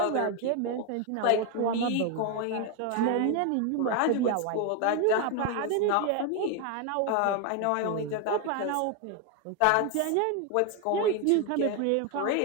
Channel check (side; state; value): both; different; correlation 0.01